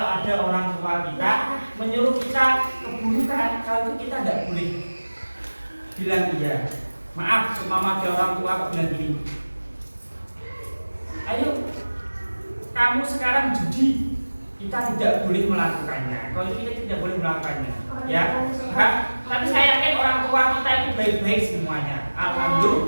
ada orang tua kita menyuruh kita keburukan, kalau itu kita tidak boleh bilang iya. Maaf, semama ada orang tua kok bilang gini, ayo kamu sekarang judi, kita tidak boleh melakukannya. Kalau itu kita tidak boleh melakukannya, ya. Tapi saya yakin orang tua kita itu baik-baik semuanya.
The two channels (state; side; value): inverted; both; correlation -1.00